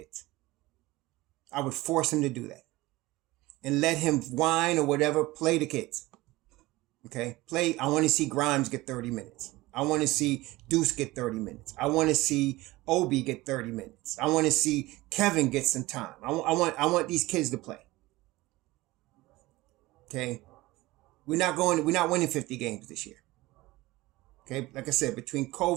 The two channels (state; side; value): quieter; left; 19.6 dB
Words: I would force him to do that. And let him whine or whatever, play the kids. Okay? I want to see Grimes get 30 minutes. I want to see Deuce get 30 minutes. I want to see Obi get 30 minutes. I want to see Kevin get some time. I want these kids to play. Okay? We're not winning 50 games this year. Okay? Like I said, between